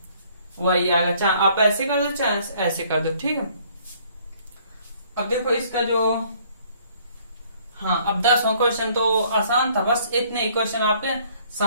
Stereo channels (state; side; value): inverted; both; correlation -0.61